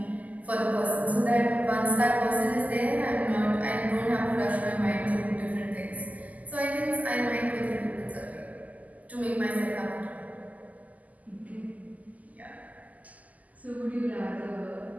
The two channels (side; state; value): left; late; 0.077 ms